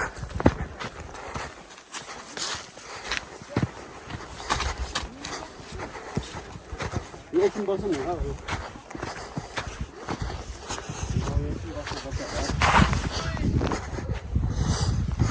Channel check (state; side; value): identical; both; correlation 1.00